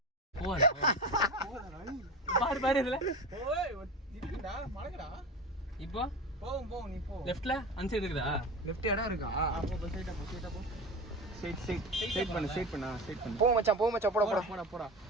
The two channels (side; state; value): both; normal; correlation 0.28